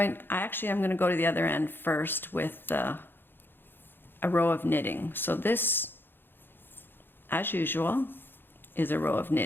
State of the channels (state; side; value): late; right; 0.10 ms